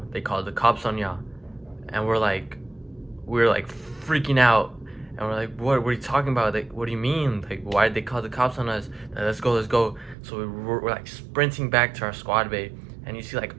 They called the cops on y'all." And we're like freaking out. And we're like, what are you talking about? Like, what do you mean? Like, why did they call the cops on us? Like, let's go. So we're like sprinting back to our squad bay. And you see like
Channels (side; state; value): left; drops out; at 10.2 s